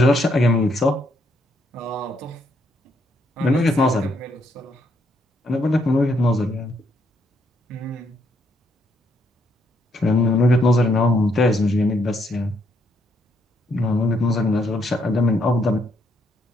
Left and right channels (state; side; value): normal; both; correlation 0.73